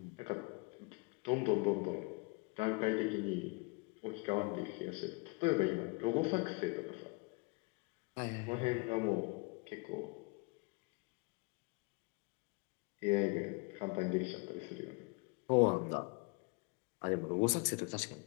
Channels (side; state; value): right; quieter; 29.7 dB